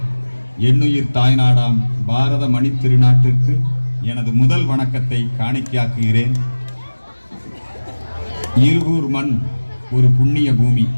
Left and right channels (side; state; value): both; inverted; correlation -1.00